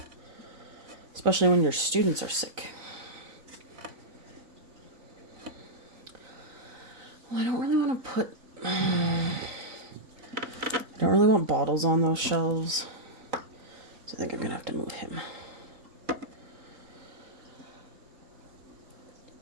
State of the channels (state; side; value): late; left; 4.0 ms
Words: Especially when your students are sick. Well, I don't really want to put... I don't really want bottles on those shelves. So I think I'm going to have to move him.